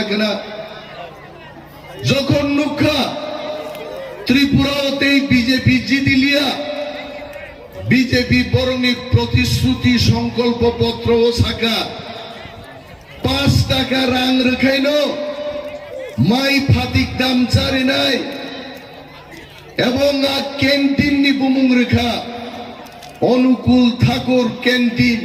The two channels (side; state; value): both; identical; correlation 1.00